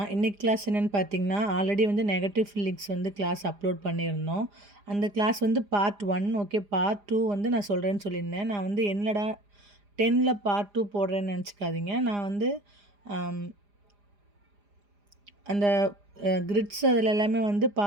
இன்னைக்கு class என்னென்னு பார்த்தீங்கன்னா, ஆல்ரெடி வந்து நெகட்டிவ் ஃபீலிங்ஸ் வந்து கிளாஸ் அப்லோட் பண்ணியிருந்தோம். அந்த கிளாஸ் வந்து பார்ட் 1 ஓகே. பார்ட் 2 வந்து நான் சொல்கிறேன்னு சொல்லியிருந்தேன். நான் வந்து என்னடா 10ல் பார்ட் 2 போடுறேன்னு நினச்சிக்காதீங்க. நான் வந்து அந்த கிரிட்ஸ் அதில் எல்லாமே வந்து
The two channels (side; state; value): left; late; 4.9 ms